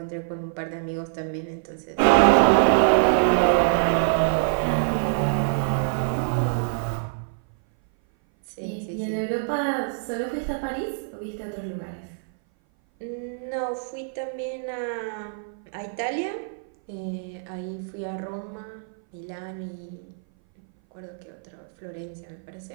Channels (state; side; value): silent; left; 58 dB below the other